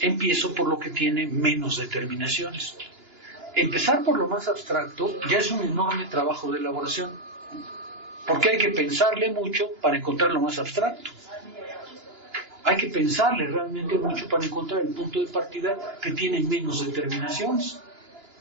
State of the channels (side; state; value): left; late; 2.9 ms